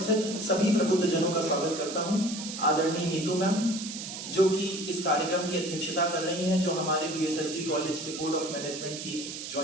सभी प्रबुद्ध जनों का स्वागत करता हूं। आदरणीय नीतू मैम जो कि इस कार्यक्रम की अध्यक्षता कर रही हैं, जो हमारे बीएसएसडी कॉलेज के बोर्ड ऑफ मैनेजमेंट की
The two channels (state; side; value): noise; right; hiss, 8 dB below the sound